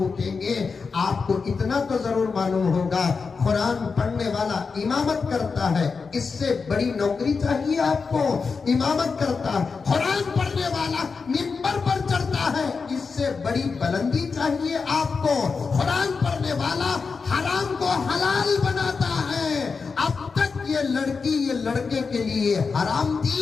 उठेंगे। आपको इतना तो जरूर मालूम होगा, कुरान पढ़ने वाला इमामत करता है, इससे बड़ी नौकरी चाहिए आपको। इमामत करता है, कुरान पढ़ने वाला मिंबर पर चढ़ता है, इससे बड़ी बुलंदी चाहिए आपको। कुरान पढ़ने वाला हराम को हलाल बनाता है। अब तक ये लड़की ये लड़के के लिए हराम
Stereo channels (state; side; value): quieter; right; 5.0 dB